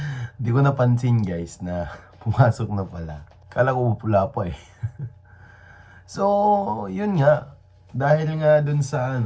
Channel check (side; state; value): both; identical; correlation 1.00